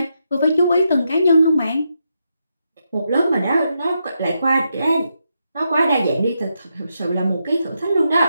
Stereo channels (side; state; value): both; inverted; correlation -0.83